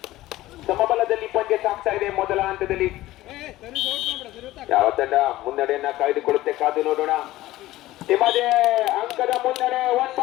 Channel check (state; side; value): quieter; right; 16.4 dB